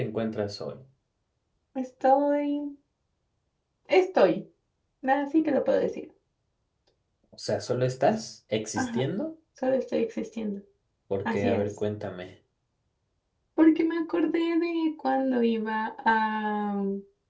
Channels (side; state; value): both; identical; correlation 1.00